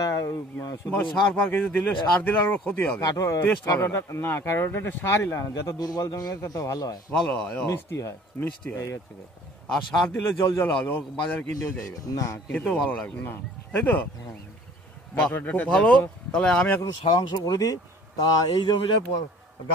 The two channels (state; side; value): normal; both; correlation 0.51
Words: সার ফার কিছু দিলে, সার দিলে আর ক্ষতি হবে। না, কাটোয়া ডাটা সারই লাগে না, যত দুর্বল জমি হয় তত ভালো হয়, মিষ্টি হয়। এই হচ্ছে কথা। আর সার দিলে জল জল হবে, ও বাজারে কিনতেও যাইবে না, খেতেও ভালো লাগবে না, তাই তো? খুব ভালো। তাহলে আমি এখন সারাংশ করে দিই। তা এই জমিটায়